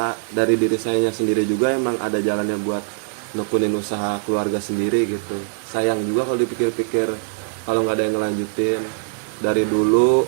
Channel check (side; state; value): left; silent; 65 dB below the other